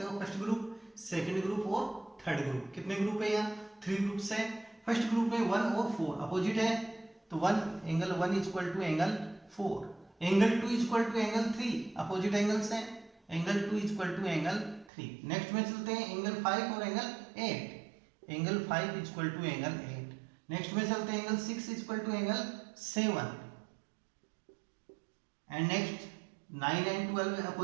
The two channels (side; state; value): left; drops out; at 14.9 s